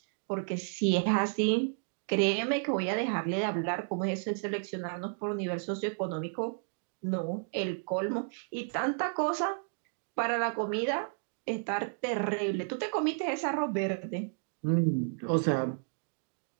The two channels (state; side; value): silent; left; 56 dB below the other